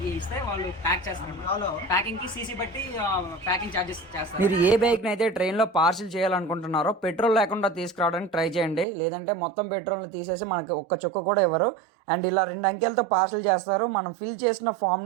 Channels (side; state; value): left; drops out; at 8.8 s